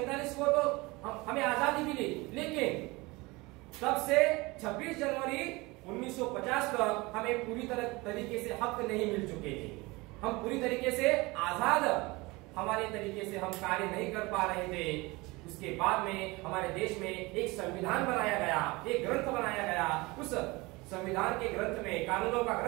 को तो हमें आजादी मिली, लेकिन तब से 26 जनवरी 1950 तक हमें पूरी तरीके से हक नहीं मिल चुके थे। हम पूरी तरीके से आजाद हमारे तरीके से हम कार्य नहीं कर पा रहे थे। उसके बाद में हमारे देश में एक संविधान बनाया गया, एक ग्रंथ बनाया गया। उस संविधान के ग्रंथ में, कानूनों का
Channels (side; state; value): left; quieter; 23.4 dB